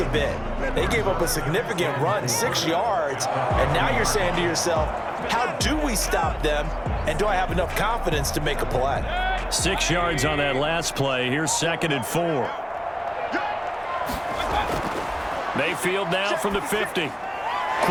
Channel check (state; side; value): identical; both; correlation 1.00